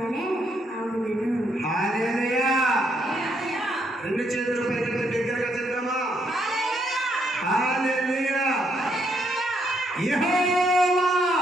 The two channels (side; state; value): both; normal; correlation 0.74